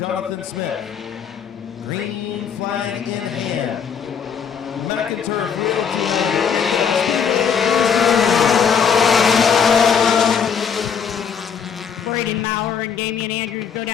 Smith. Green flag in hand. McIntyre Braden Maurer and Damian Andrews go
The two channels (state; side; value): quieter; right; 7.0 dB